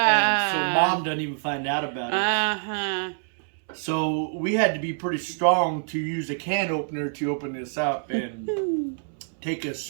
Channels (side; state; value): left; silent; 61 dB below the other